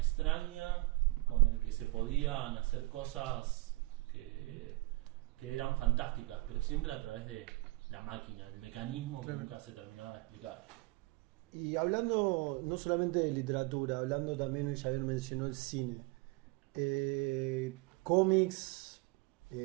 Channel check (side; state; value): left; quieter; 22.7 dB